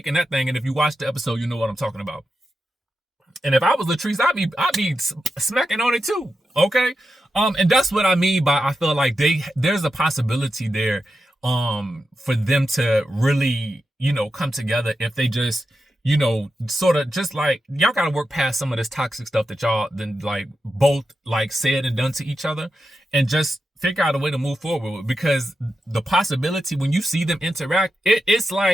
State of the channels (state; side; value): normal; both; correlation 0.89